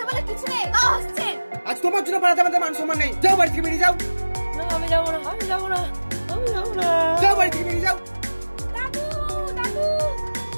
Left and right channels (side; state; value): both; inverted; correlation -1.00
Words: বলে কিছু নেই? তাও হাসছেন। আজ তোমার জন্য পাড়াতে আমাদের মান সম্মান নেই। যাও বাড়ি থেকে বেরিয়ে যাও। না আমি যাবো না। আমি যাবো না। আমি যাবো না। যাও বাড়ি থেকে বেরিয়ে যাও। দাদু দাদু।